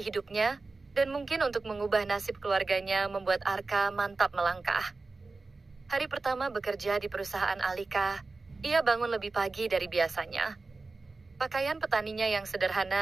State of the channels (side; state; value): left; quieter; 3.7 dB